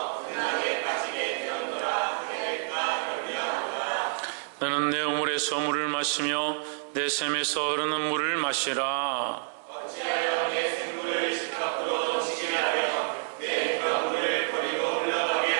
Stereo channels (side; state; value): left; silent; 59 dB below the other